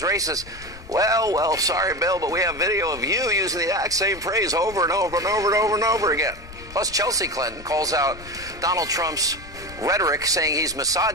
racist. Well, sorry, Bill, but we have video of you using the exact same phrase over and over and over and over and over again. Plus, Chelsea Clinton calls out Donald Trump's rhetoric, saying he's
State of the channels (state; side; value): noise; left; rumble, 17 dB below the sound